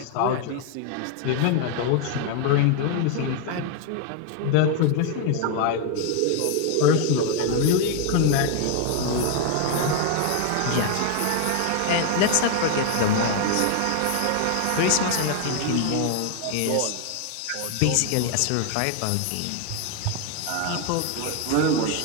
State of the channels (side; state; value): both; different; correlation 0.00